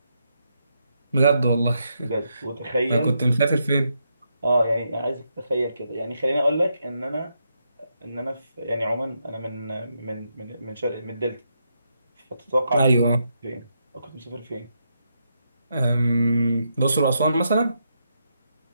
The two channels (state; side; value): inverted; both; correlation -0.81